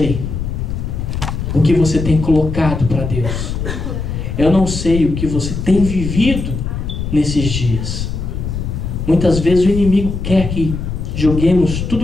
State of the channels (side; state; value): left; noise; rumble, 4 dB below the sound